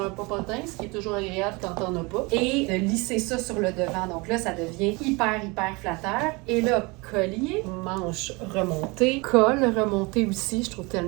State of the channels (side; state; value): left; quieter; 26.4 dB